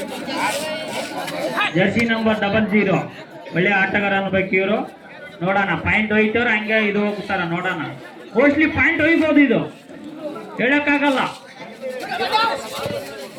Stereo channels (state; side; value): identical; both; correlation 1.00